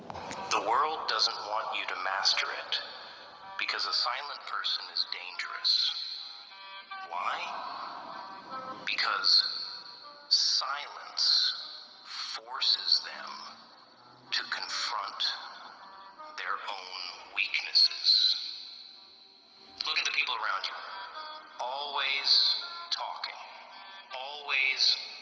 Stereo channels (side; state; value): both; identical; correlation 1.00